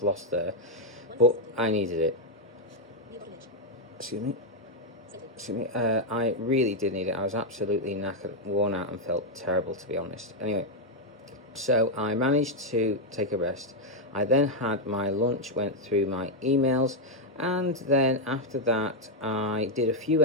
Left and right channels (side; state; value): both; normal; correlation 0.00